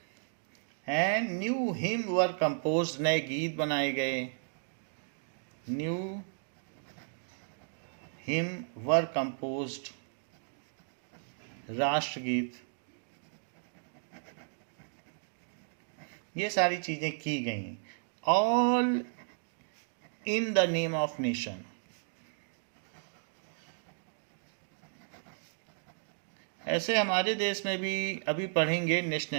And new hymn were compose, नए गीत बनाए गए, न्यू हिम वर कंपोज्ड, राष्ट्रगीत, ये सारी चीजें की गई, all in the name of nation. ऐसे हमारे देश में भी अभी पढ़ेंगे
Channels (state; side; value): silent; left; digital silence